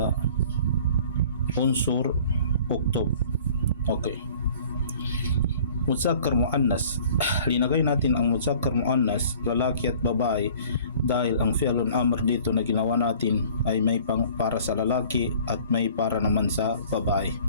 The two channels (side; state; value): both; inverted; correlation -0.50